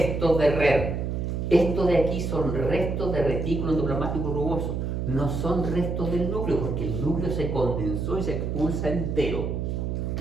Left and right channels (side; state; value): right; noise; hum, 2 dB below the sound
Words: de RER. Esto de aquí son restos de retículo endoplasmático rugoso, no son restos del núcleo, porque el núcleo se condensó y se expulsa entero.